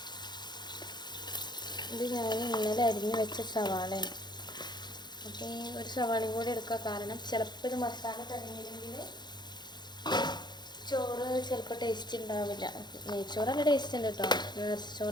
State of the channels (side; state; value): right; late; 0.21 ms